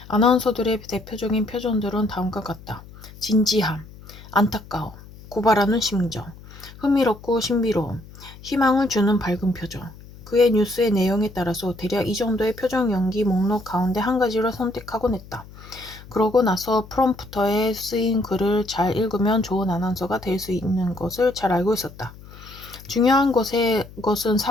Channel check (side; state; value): left; noise; hum, 19 dB below the sound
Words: 아나운서들의 대표적인 표정들은 다음과 같다. 진지함, 안타까움, 고발하는 심정, 흥미롭고 신비로움, 희망을 주는 밝은 표정. 그의 뉴스의 내용에 따라서 대략 이 정도의 표정 연기 목록 가운데 한 가지를 선택하곤 했다. 그러고 나서 프롬프터에 쓰인 글을 잘 읽으면 좋은 아나운서가 될 수 있는 것을 잘 알고 있었다. 중요한 것은